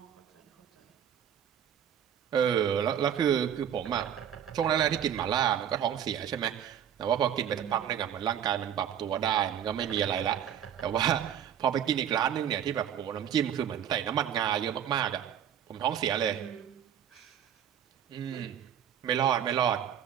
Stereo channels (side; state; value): left; quieter; 9.3 dB